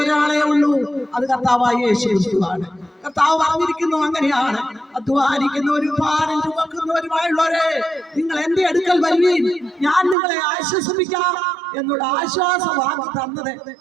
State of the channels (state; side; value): drops out; left; at 10.2 s